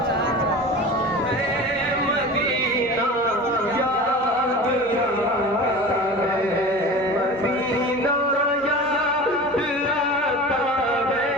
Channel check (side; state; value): right; noise; hum, 25 dB below the sound